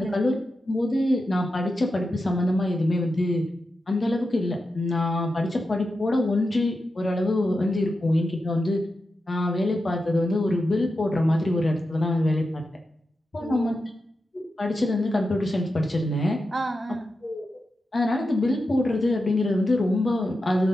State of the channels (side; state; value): both; normal; correlation 0.89